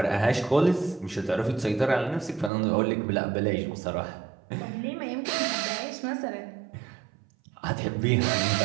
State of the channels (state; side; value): drops out; left; at 2.5 s